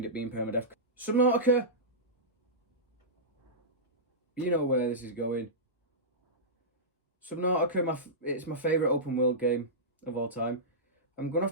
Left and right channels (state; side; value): normal; both; correlation -0.15